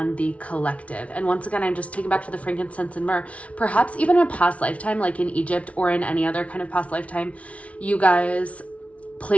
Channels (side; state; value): right; late; 0.064 ms